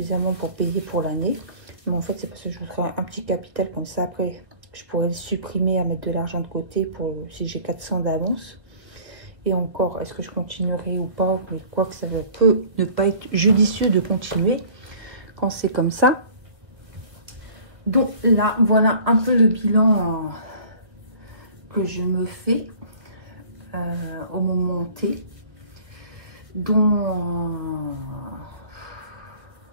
pour payer pour l'année. Mais en fait, c'est parce que je voudrais un petit capital comme ça. Après, je pourrais le supprimer à mettre de l'argent de côté pour si j'ai 400 d'avance. Et encore, est-ce que je continuerai ou pas? Mais quoi que ça peut ne pas être judicieux de continuer quand c'est comme ça. Donc là, voilà un peu le bilan que je me fais au moment T. Donc,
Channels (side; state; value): left; late; 1.4 ms